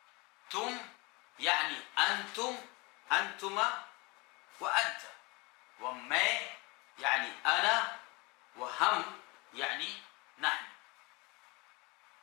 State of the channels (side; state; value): right; quieter; 26.2 dB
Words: تم يعني أنتم أنتما وأنت، وما يعني أنا، وهم يعني نحن.